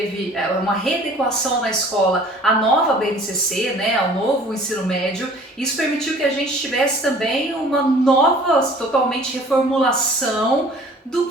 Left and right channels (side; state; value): both; normal; correlation 0.50